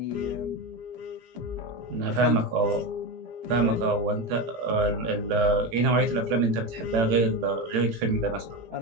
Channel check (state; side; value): late; left; 18 ms